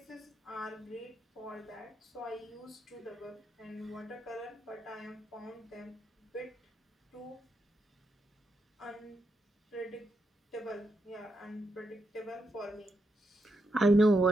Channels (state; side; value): normal; both; correlation 0.83